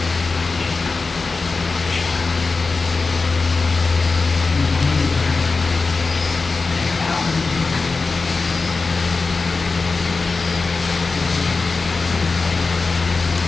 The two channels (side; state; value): right; quieter; 4.1 dB